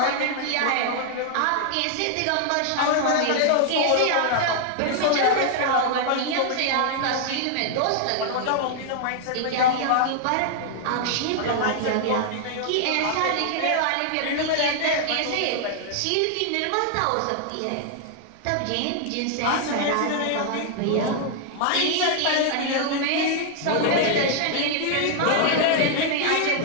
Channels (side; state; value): both; different; correlation 0.00